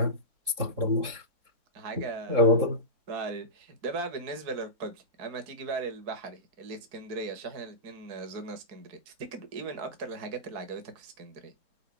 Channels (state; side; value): late; left; 3.7 ms